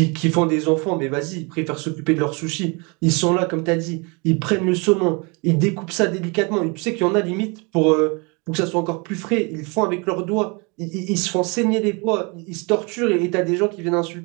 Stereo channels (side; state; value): left; quieter; 30.3 dB